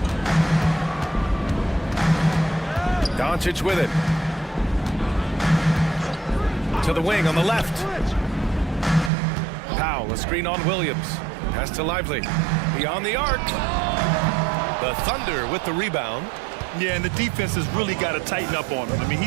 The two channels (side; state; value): left; drops out; at 9.1 s